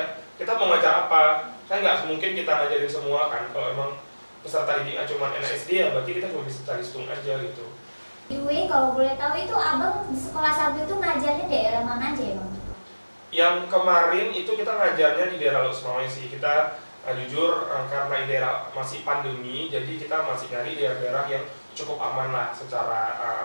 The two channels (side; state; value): both; inverted; correlation -1.00